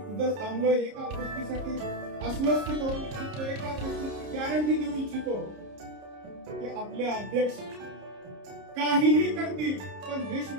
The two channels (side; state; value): left; late; 30 ms